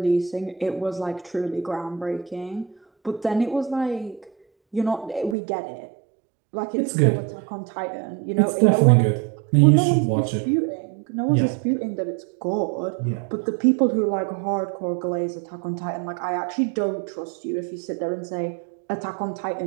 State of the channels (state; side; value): drops out; left; at 5.4 s